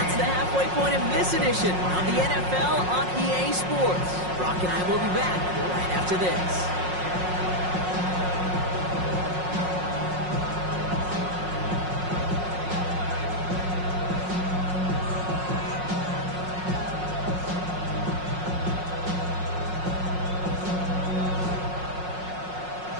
the halfway point of this edition of the NFL on EA Sports. Brock and I will be back right after this.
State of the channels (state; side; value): late; left; 5.5 ms